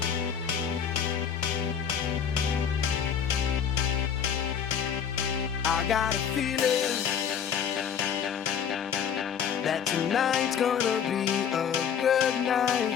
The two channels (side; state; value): right; quieter; 7.9 dB